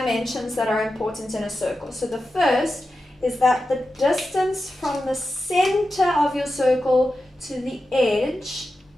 that are important in a circle. So the first is that the distance from the center of your circle to the edge,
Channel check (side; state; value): both; normal; correlation 0.91